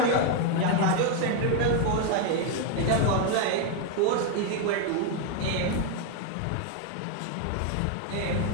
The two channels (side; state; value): both; different; correlation 0.01